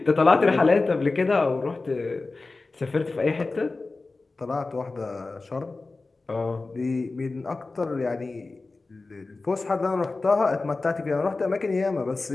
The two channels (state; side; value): quieter; right; 3.6 dB